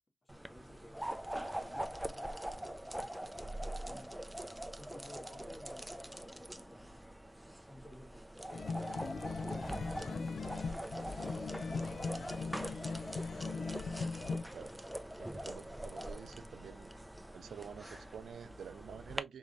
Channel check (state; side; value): normal; both; correlation 0.93